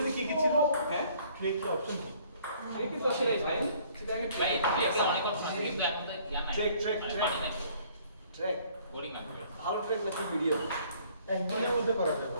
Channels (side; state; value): both; inverted; correlation -0.59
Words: কি কি ছিল হ্যাঁ ট্রেক কি অপশন কি এই কিন্তু আসলে ফাইন সেটা আমি ভাই এটা অনেক অপশন আছে কিন্তু এখন তো ইয়া নাই ট্রেক পানি নাই ট্রেক বোরিং লাগবে ভালো ট্রেক নাকি ভিডিও একদিনের মধ্যে করা যাবে